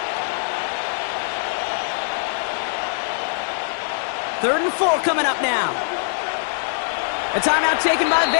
Third and 4 coming up now. A timeout taken by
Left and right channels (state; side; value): silent; right; digital silence